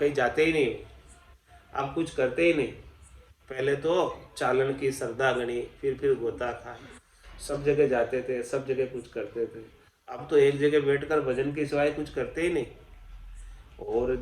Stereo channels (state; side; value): identical; both; correlation 1.00